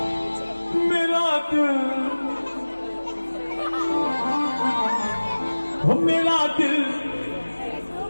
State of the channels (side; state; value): both; inverted; correlation -1.00